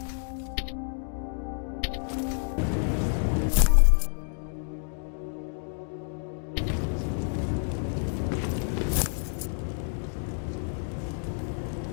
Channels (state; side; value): silent; right; digital silence